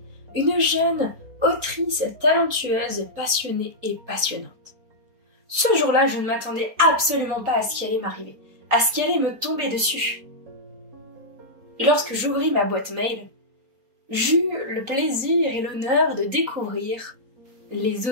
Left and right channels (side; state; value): left; late; 4.3 ms